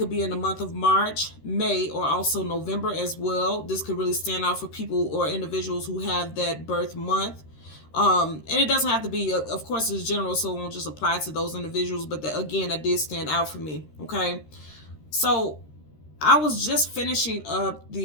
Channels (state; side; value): late; right; 13 ms